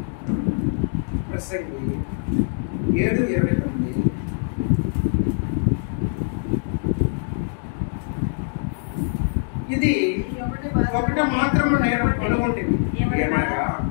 ప్రసంగి 7:29 ఇది ఒకటి మాత్రం నేను కనుగొంటుంది,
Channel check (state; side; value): silent; right; digital silence